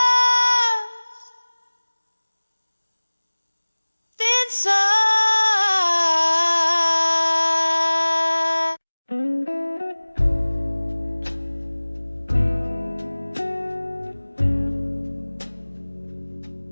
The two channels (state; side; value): inverted; both; correlation -1.00